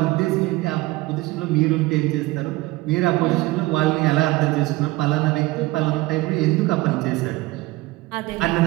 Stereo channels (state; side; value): quieter; left; 20.0 dB